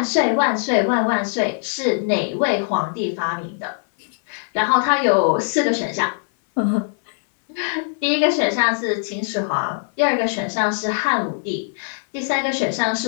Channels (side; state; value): right; silent; 65 dB below the other